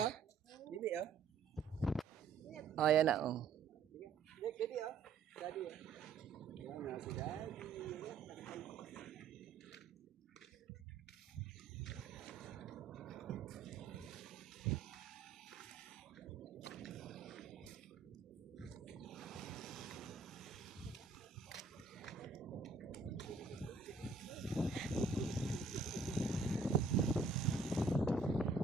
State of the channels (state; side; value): quieter; left; 4.6 dB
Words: Bibi oh. Oh, yan na. Oh. Bibi oh. Daddy oh. Ayan na si Daddy.